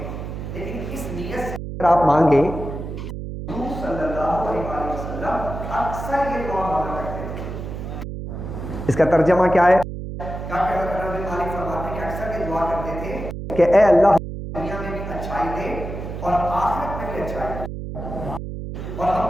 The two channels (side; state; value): right; noise; hum, 7 dB below the sound